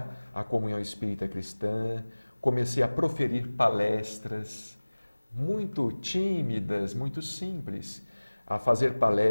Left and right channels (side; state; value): both; inverted; correlation -1.00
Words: a Comunhão Espírita Cristã, comecei a proferir palestras muito tímidas, muito simples, a fazer